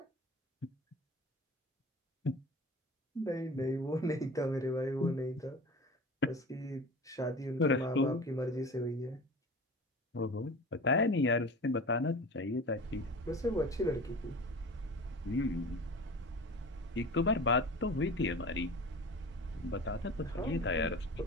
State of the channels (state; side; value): normal; both; correlation 0.36